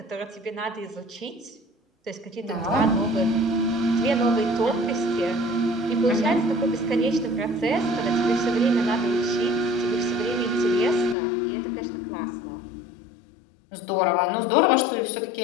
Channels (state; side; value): drops out; right; at 11.2 s